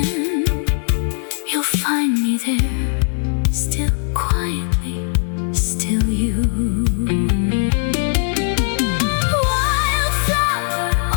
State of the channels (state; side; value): silent; right; 67 dB below the other